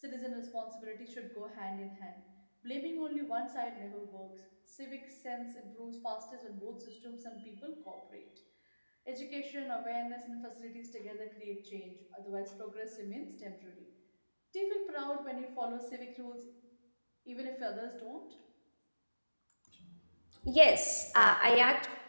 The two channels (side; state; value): both; inverted; correlation -1.00